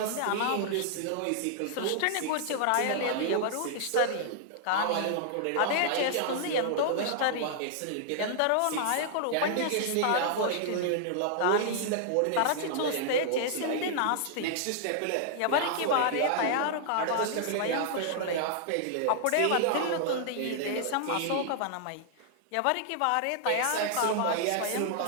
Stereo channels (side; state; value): both; different; correlation -0.01